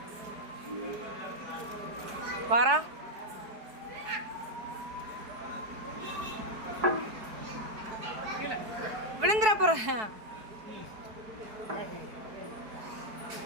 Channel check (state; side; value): late; left; 4.6 ms